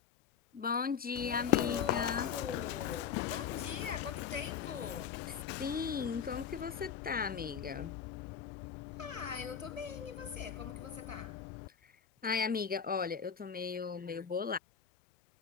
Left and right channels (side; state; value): right; quieter; 7.5 dB